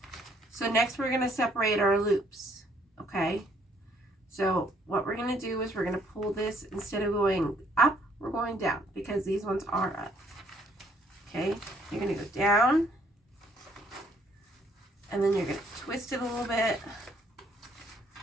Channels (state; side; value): normal; both; correlation 0.66